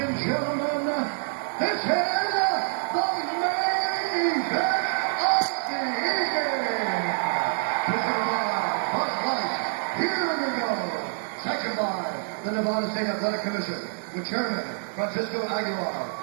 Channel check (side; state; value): left; silent; 61 dB below the other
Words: gentlemen, this is the main event of the evening. Presented by Bud Light. Here we go. Second by the Nevada State Athletic Commission, with Chairman Francisco Aguilar,